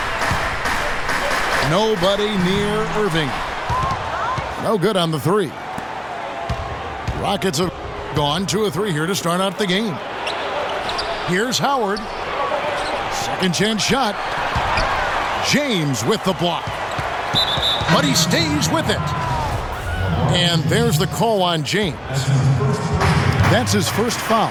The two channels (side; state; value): both; identical; correlation 1.00